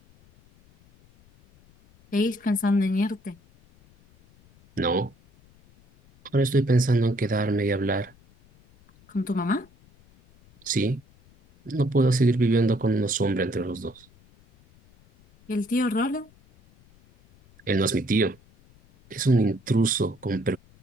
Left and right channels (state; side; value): noise; left; rumble, 29 dB below the sound